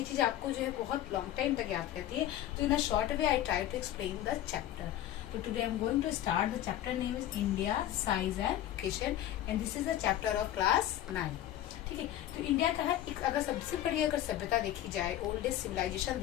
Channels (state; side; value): quieter; right; 12.8 dB